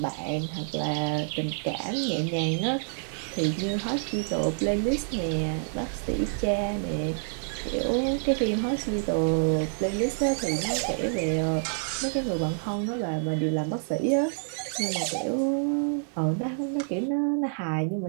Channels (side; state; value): left; silent; 60 dB below the other